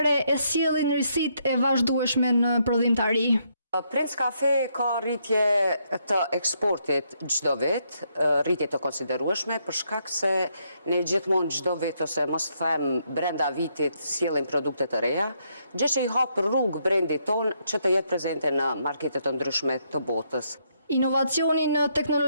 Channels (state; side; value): inverted; both; correlation -0.75